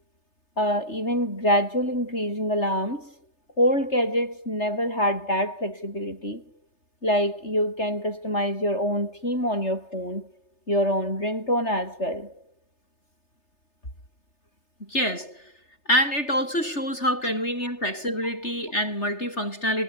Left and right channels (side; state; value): right; late; 3.3 ms